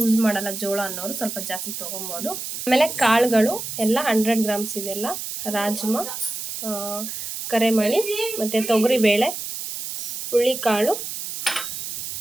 ಮಾಡಲ್ಲ ಜೋಳ ಅನ್ನೋರು ಸ್ವಲ್ಪ ಜಾಸ್ತಿ ತೊಗೊಬೋದು. ಆಮೇಲೆ ಕಾಳುಗಳು ಎಲ್ಲ 100 ಗ್ರಾಮ್ಸ್ ಇದೆಲ್ಲ. ರಾಜ್ಮಾ, ಕರೆಮಣಿ, ಮತ್ತು ತೊಗರಿಬೇಳೆ, ಹುಳ್ಳಿಕಾಳು,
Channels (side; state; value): right; noise; hiss, 6 dB below the sound